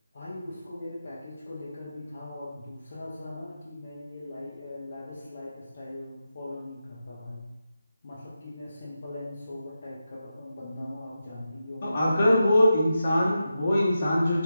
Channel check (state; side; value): inverted; both; correlation -0.90